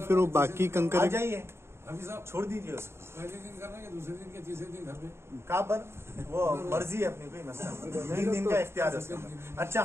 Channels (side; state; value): left; late; 0.12 ms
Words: फिर वो बाकी कंकर आ जाइए, छोड़ दीजिए उसको। पहले दिन करना है, दूसरे दिन के तीसरे दिन घर पे कहाँ पर वो मर्जी है अपनी, कोई मसला नहीं, 3 दिन का इख्तियार है। अच्छा